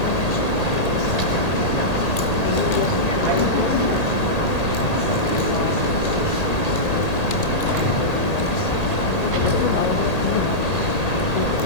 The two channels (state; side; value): late; right; 1.8 ms